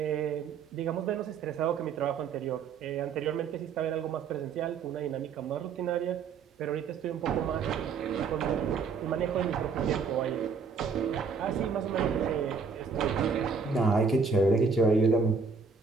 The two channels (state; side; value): quieter; left; 5.4 dB